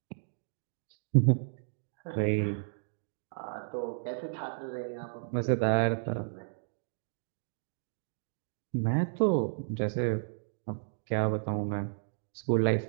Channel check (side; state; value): left; silent; digital silence